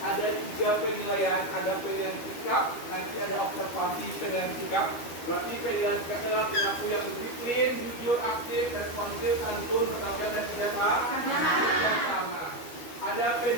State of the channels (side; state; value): right; late; 12 ms